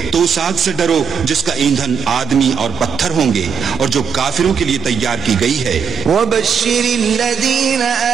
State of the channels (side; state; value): left; quieter; 7.0 dB